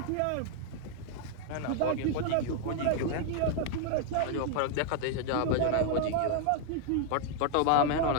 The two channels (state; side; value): different; both; correlation 0.00